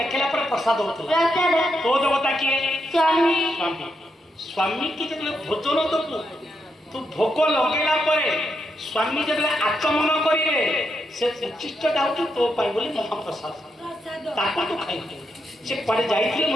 पर प्रसाद होता तो देवता किए स्वामी स्वामी स्वामी की जब भोजन दबू तू भोग लगेला स्वामी जब आचमन करेंगे से उचिष्ट दाऊ तो पाई बोली महाप्रसाद ताको तो खाई से पड़े जाइए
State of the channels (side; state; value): both; normal; correlation 0.82